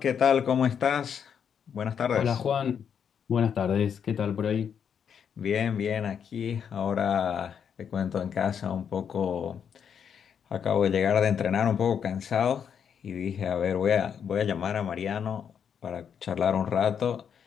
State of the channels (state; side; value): quieter; right; 7.7 dB